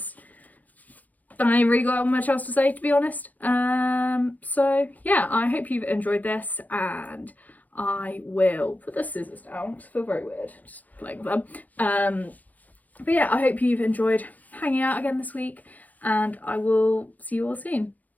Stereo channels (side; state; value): right; late; 0.080 ms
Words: I ain't really got much else to say, to be honest. So yeah, I hope you've enjoyed this, and I will put the scissors down. I feel very weird just playing with them. But yeah, I hope you've enjoyed hanging out again this week, and I will see you all soon.